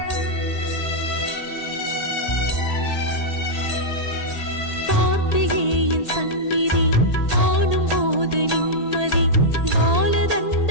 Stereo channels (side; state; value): right; late; 1.8 ms